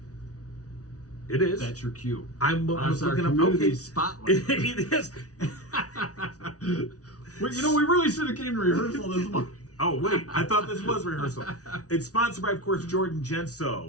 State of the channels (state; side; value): late; right; 0.68 ms